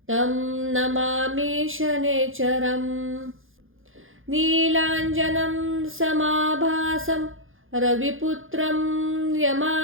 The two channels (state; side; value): late; left; 0.59 ms